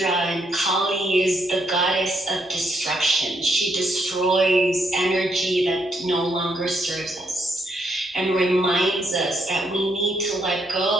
and Kali is the goddess of destruction. She destroys energy that no longer serves us and reminds us that we need to let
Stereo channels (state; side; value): normal; both; correlation 0.76